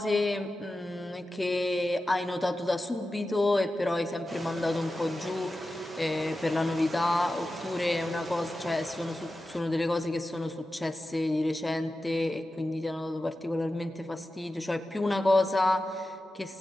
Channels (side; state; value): both; normal; correlation 0.93